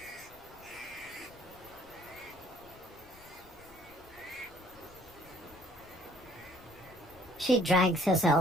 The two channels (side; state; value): left; noise; rumble, 22 dB below the sound